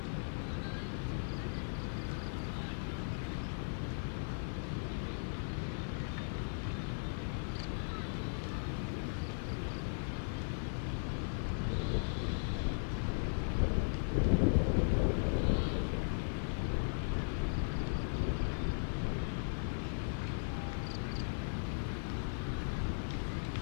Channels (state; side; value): silent; right; 53 dB below the other